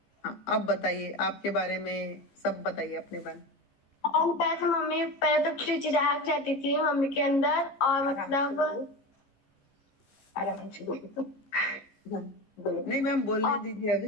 हाँ, अब बताइए आपके बारे में, सब बताइए अपने बारे में। हम पहले मम्मी पहले तो चिड़चिड़ाहट रहती थी मम्मी के अंदर, और मतलब आराम से बोलो। नहीं मैम, बोलने दीजिए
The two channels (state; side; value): late; right; 15 ms